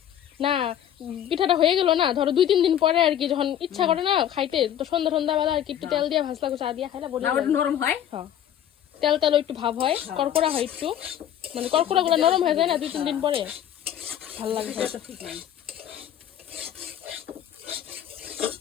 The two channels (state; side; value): quieter; right; 10.6 dB